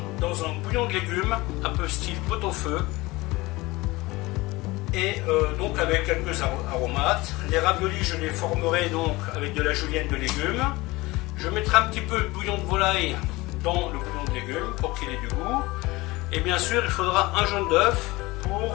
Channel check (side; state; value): right; quieter; 21.2 dB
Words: dans un bouillon de légumes un peu style pot-au-feu et donc avec quelques aromates. Les raviolis je les formerai donc avec de la julienne de légumes. Je mettrai un petit peu de bouillon de volaille dans le bouillon de légumes pour qu'il ait du goût. Et bien sûr, il faudra un jaune d'œuf